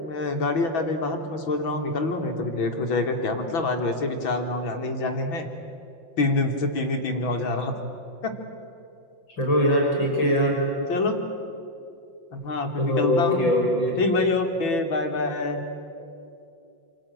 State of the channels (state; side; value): late; right; 6.1 ms